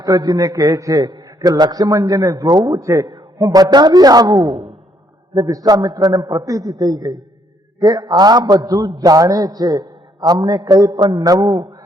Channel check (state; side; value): normal; both; correlation 0.70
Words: કહે છે કે લક્ષ્મણજીને જોવું છે, હું બતાવી આવું. એટલે વિશ્વામિત્રને પ્રતીતિ થઈ ગઈ કે આ બધું જાણે છે, અમને કંઈ પણ નવું